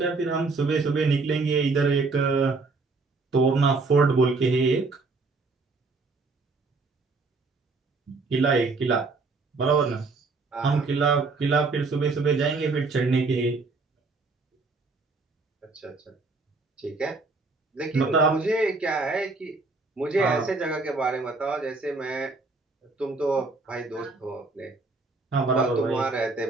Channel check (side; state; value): left; quieter; 3.8 dB